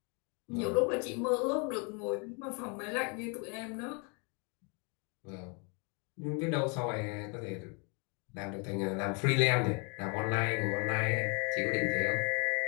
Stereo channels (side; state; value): right; quieter; 34.7 dB